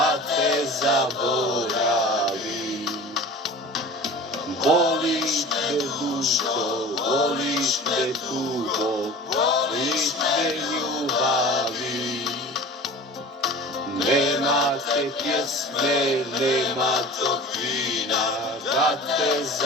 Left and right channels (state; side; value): normal; both; correlation 0.38